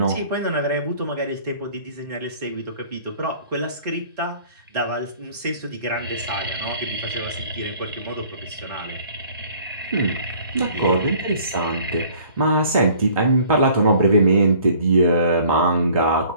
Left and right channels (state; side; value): inverted; both; correlation -0.53